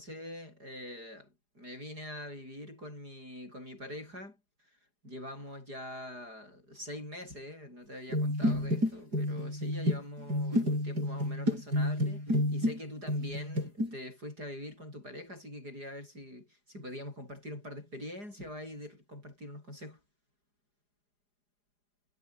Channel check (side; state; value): left; late; 4.9 ms